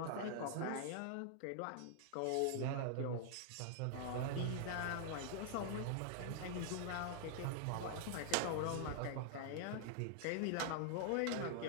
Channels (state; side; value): different; both; correlation -0.01